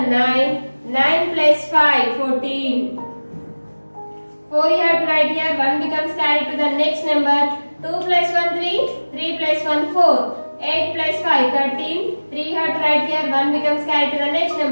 9. 9 plus 5 14. 4 you have to write here. 1 becomes carried to the next number. 2 plus 1 3. 3 plus 1 4. 8 plus 5 13. 3 you have to write here. 1 becomes carried to the next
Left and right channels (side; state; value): both; inverted; correlation -1.00